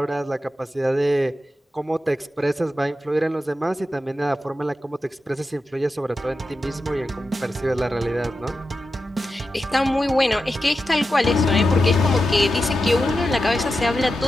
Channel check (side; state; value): both; normal; correlation 0.90